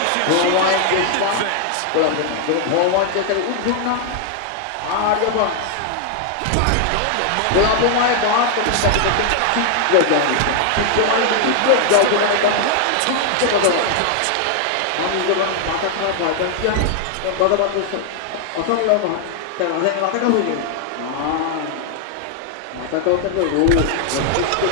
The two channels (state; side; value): different; both; correlation 0.00